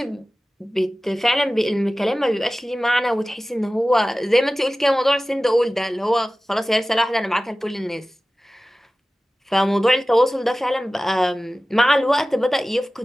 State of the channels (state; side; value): normal; both; correlation 0.96